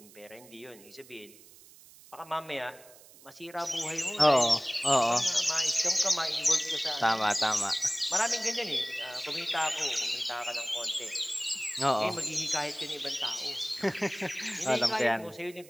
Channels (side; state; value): right; noise; hiss, 22 dB below the sound